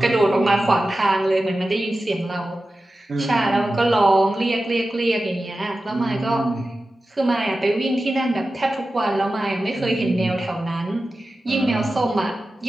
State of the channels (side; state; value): both; normal; correlation 0.94